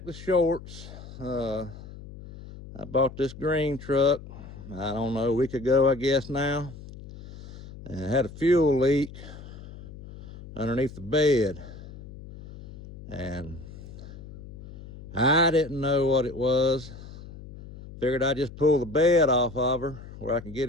the shorts. I bought this green truck, I don't know, a week ago, I guess now, and it had a fuel leak underneath the bed. And I didn't know what it was. Figured I'd just pull the bed off of her where I can get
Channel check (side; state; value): left; noise; hum, 15 dB below the sound